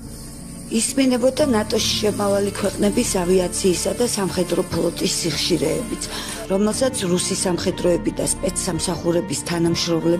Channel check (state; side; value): identical; both; correlation 1.00